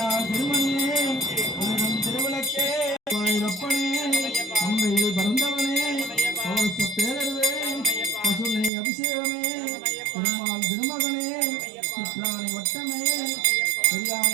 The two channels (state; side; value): drops out; left; at 8.7 s